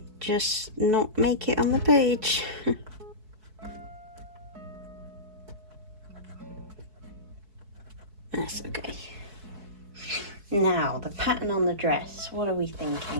just not make it on the page. That's okay. Now, the pattern on the dress, what are we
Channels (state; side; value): late; left; 4.6 ms